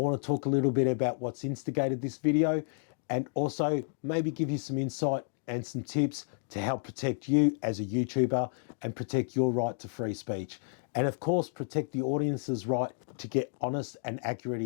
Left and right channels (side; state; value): right; silent; digital silence